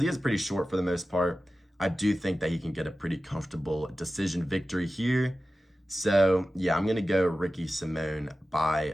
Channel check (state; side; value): normal; both; correlation 0.94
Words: he is pretty short for the most part, I do think that he can get a pretty comfortable decision victory here. So, yeah, I'm going to go Ricky Simón